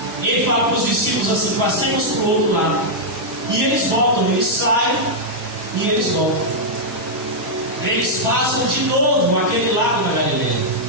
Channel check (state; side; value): normal; both; correlation -0.06